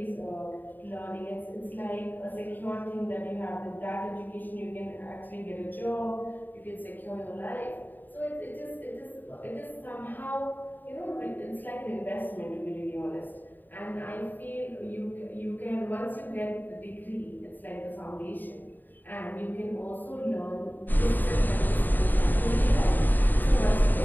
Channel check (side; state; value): right; late; 0.089 ms